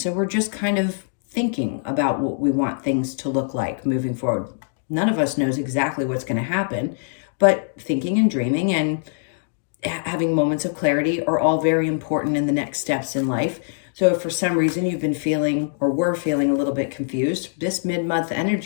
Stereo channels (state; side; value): silent; right; digital silence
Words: So we're just kind of thinking about what we want things to look like moving forward. None of us knows exactly what's going to happen, but thinking and dreaming and having moments of clarity are all very important in the next steps in life. So if for some reason you've been feeling or were feeling a little bit confused, this mid-month